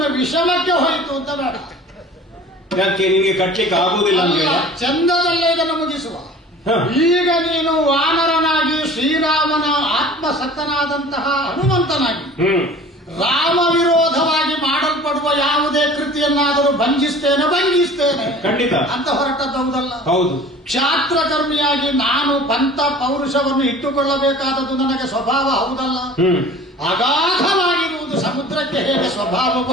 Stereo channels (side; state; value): both; normal; correlation 0.44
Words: ವಿಷಮಕ್ಕೆ ಹೋಯಿತು ಅಂತ ಬೇಡ. ಯಾಕೆ ನಿಮಗೆ ಕಟ್ಲಿಕ್ಕೆ ಆಗುವುದಿಲ್ಲ ಅಂತ? ಚಂದದಲ್ಲೇ ಇದನ್ನು ಮುಗಿಸುವ. ಈಗ ನೀನು ವಾನರನಾಗಿ ಶ್ರೀರಾಮನ ಆತ್ಮಸಕ್ತನಾದಂತಹ ಹನುಮಂತನಾಗಿ ರಾಮ ವಿರೋಧವಾಗಿ ಮಾಡಲ್ಪಡುವ ಯಾವುದೇ ಕೃತಿಯನ್ನಾದರೂ ಭಂಜಿಸ್ತೇನೆ ಖಂಡಿತ ಅಂತ ಹೊರಟದ್ದೌದಲ್ಲ. ಹೌದು. ಕ್ಷಾತ್ರಕರ್ಮಿಯಾಗಿ ನಾನು ಪಂಥ ಪೌರುಷವನ್ನು ಇಟ್ಟುಕೊಳ್ಳಬೇಕಾದದ್ದು ನನಗೆ ಸ್ವಭಾವ ಹೌದಲ್ಲ. ಅಗಾಧವಾಗಿರುವುದು ಸಮುದ್ರಕ್ಕೆ ಹೇಗೆ